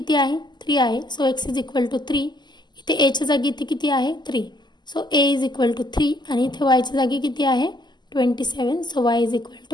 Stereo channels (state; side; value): late; right; 0.21 ms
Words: आहे 3 आहे, so x is equal to 3. इथे एच्या जागी इथे किती आहे 3, so a is equal to 3. आणि इथे yच्या जागी किती आहे 27, so y is equal